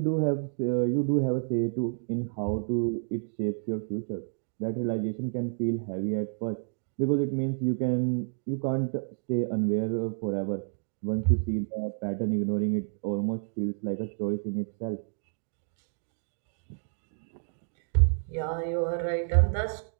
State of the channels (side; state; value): left; silent; digital silence